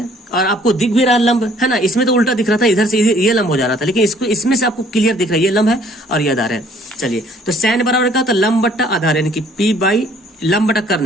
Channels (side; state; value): both; normal; correlation 0.59